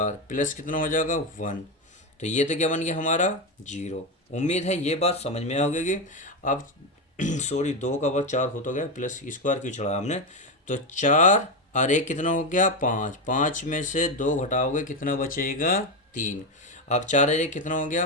प्लस कितना हो जाएगा 1, तो ये तो क्या बन गया हमारा 0। उम्मीद है ये बात समझ में आ गई। अब सॉरी 2 का वर्ग 4 हो तो गया, प्लस स्क्वायर क्यों चढ़ा हमने। तो 4 और 1 कितना हो गया 5, 5 में से 2 घटाओगे कितना बचेगा 3। अब 4 और 1 कितना हो गया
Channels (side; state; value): both; normal; correlation 0.12